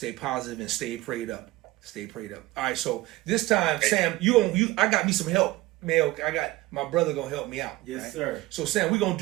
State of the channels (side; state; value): left; quieter; 18.1 dB